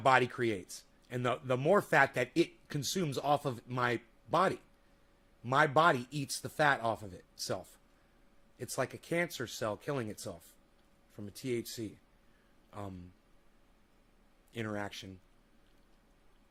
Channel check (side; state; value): both; identical; correlation 1.00